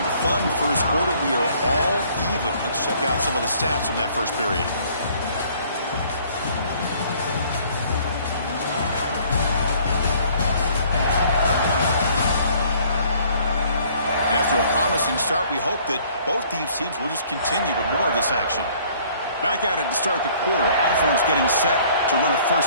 fun first quarter, we are all even. Let's check out some of the stats from that first period. After a promising start, we hope that both these teams will just continue with more of this action. Back at it to start the quarter. Offense getting set to run a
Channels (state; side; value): inverted; both; correlation -0.58